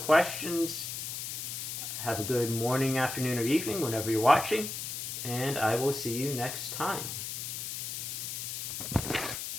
have a good morning, afternoon, or evening whenever you're watching, and I will see you next time.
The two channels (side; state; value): left; noise; hiss, 5 dB below the sound